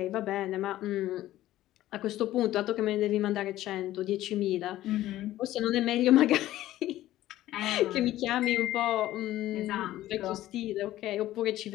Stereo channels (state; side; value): quieter; right; 14.7 dB